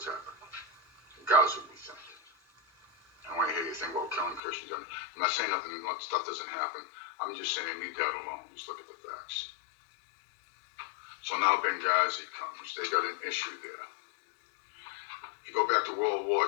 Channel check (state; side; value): drops out; right; at 4.4 s